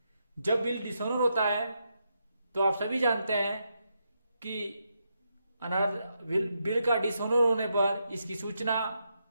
जब बिल डिसऑनर होता है तो आप सभी जानते हैं कि बिल का डिसऑनर होने पर इसकी सूचना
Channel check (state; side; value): inverted; both; correlation -0.82